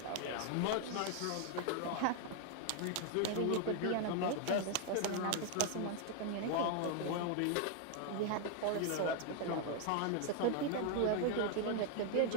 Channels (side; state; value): both; different; correlation 0.00